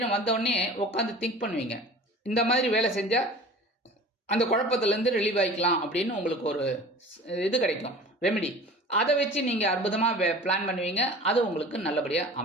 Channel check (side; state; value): both; normal; correlation 0.41